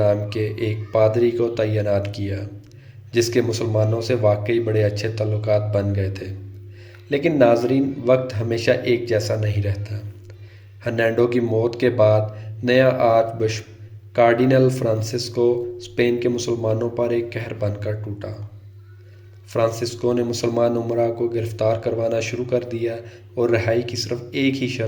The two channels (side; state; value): both; identical; correlation 1.00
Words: کے ایک پادری کو تعینات کیا، جس کے مسلمانوں سے واقعی بڑے اچھے تعلقات بن گئے تھے۔ لیکن ناظرین، وقت ہمیشہ ایک جیسا نہیں رہتا۔ ہرنینڈو کی موت کے بعد نیا archbishop cardinal Francisco Spain کے مسلمانوں پر ایک قہر بن کر ٹوٹا۔ فرانسسکو نے مسلمان امراء کو گرفتار کروانا شروع کر دیا، اور رہائی کی صرف ایک ہی